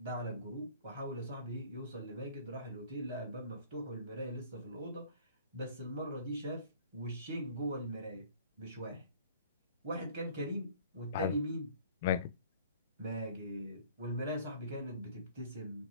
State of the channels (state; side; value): inverted; both; correlation -0.51